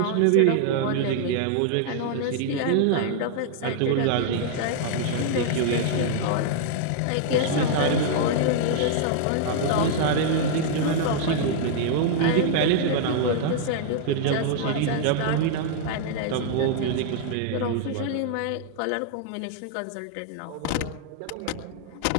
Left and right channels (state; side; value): different; both; correlation -0.01